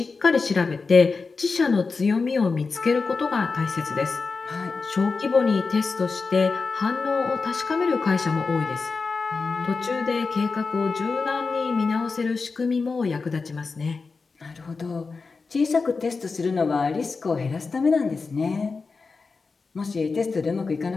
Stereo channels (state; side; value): quieter; right; 4.4 dB